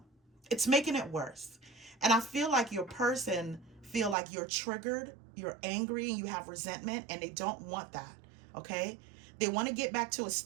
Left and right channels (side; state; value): left; drops out; at 4.2 s